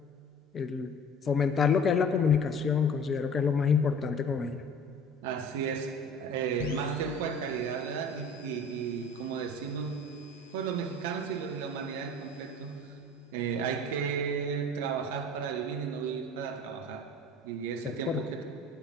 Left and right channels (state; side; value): normal; both; correlation 0.43